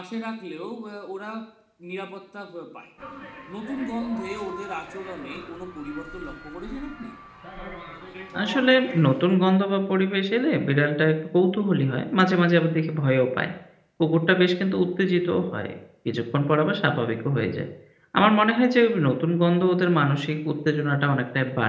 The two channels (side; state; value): both; identical; correlation 1.00